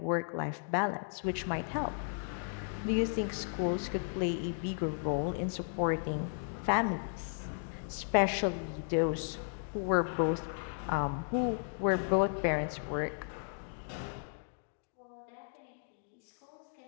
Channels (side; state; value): right; silent; digital silence